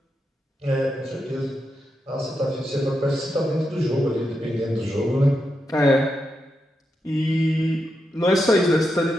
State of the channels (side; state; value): both; normal; correlation 0.85